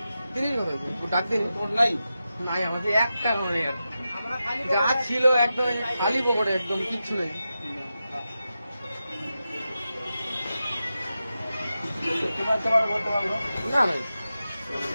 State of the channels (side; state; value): both; inverted; correlation -0.91